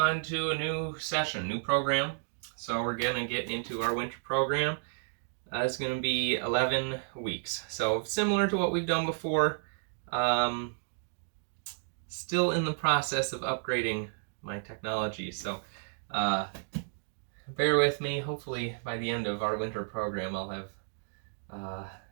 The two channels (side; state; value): left; silent; digital silence